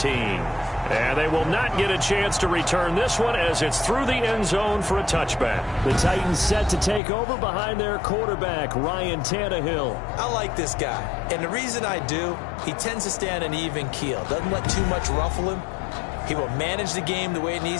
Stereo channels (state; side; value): drops out; right; at 7.0 s